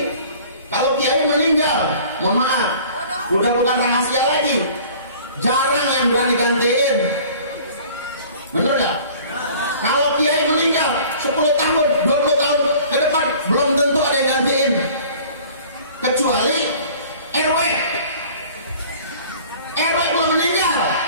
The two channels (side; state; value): both; inverted; correlation -0.48